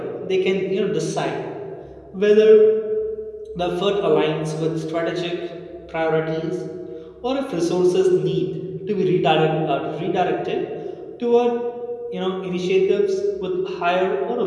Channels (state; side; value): identical; both; correlation 1.00